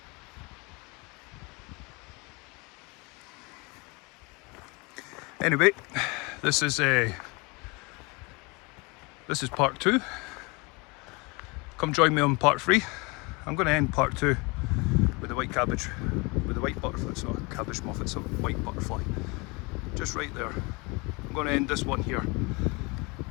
Anyway, this is part 2. Come join me on part 3. I'm going to end part 2 with the white cabbage, with the white butterfly. It's not a cabbage moth, it's a white butterfly. Just right there. I'm going to end this one here.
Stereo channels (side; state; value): right; quieter; 27.8 dB